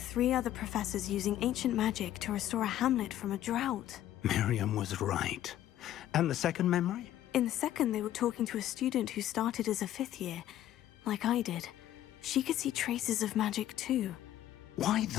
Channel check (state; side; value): quieter; right; 12.6 dB